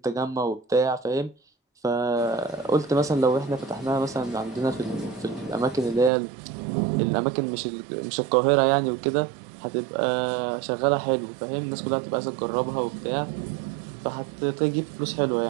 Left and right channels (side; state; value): left; drops out; at 6.1 s